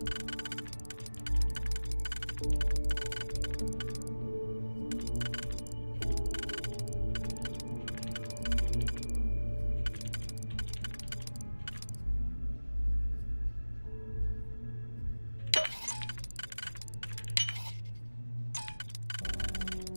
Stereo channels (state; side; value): inverted; both; correlation -1.00